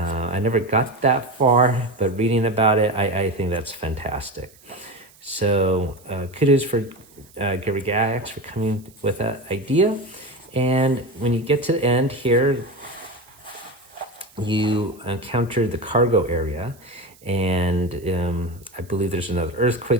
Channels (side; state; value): right; noise; hiss, 27 dB below the sound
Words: never got that far, but reading about it, I think that's fantastic. So kudos for Gygax for coming with that idea. And when you get to the end here, you encounter the cargo area. And I believe there's another